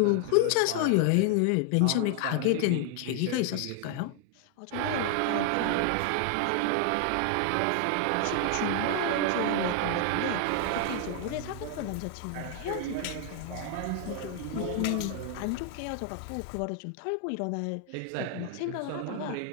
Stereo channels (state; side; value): different; both; correlation 0.00